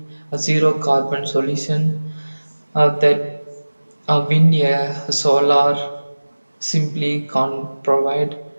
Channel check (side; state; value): both; inverted; correlation -1.00